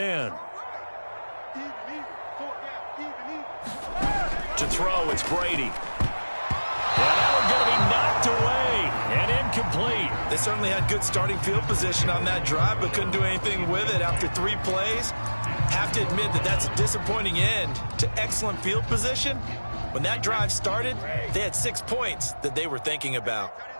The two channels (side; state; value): both; inverted; correlation -1.00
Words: To throw, it's Brady. And that one going to be knocked away and incomplete. They certainly had good starting field position on that drive, but couldn't do anything with it after 3 plays. Have to admit that that's a disappointing end to excellent field position. When that drive started, they had 6 points that they were thinking about.